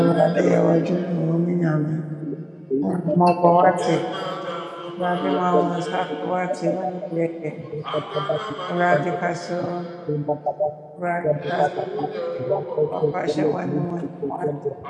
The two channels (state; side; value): identical; both; correlation 1.00